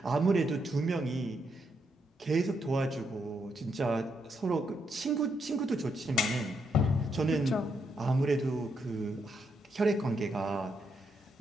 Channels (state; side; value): normal; both; correlation 0.79